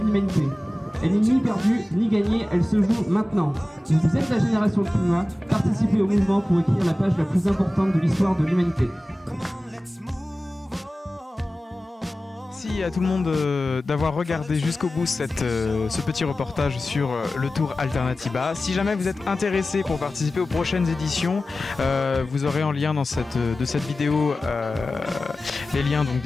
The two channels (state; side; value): normal; both; correlation 0.96